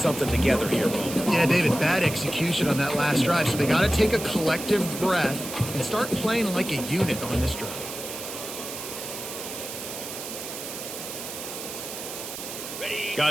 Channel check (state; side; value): noise; right; hiss, 8 dB below the sound